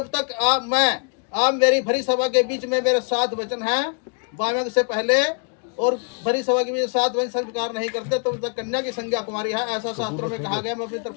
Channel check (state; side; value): quieter; right; 38.8 dB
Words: तक आप मेरी भरी सभा के बीच में मेरे 7 वचन हैं वामक से पहले, और भरी सभा के बीच 7 वचन स्वीकार नहीं करते तो तक कन्या की संज्ञा कुमारी है, ऐसा शास्त्रों में कहा गया। मैं अपनी